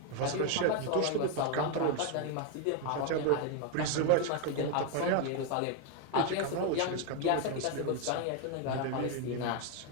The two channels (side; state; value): both; different; correlation 0.01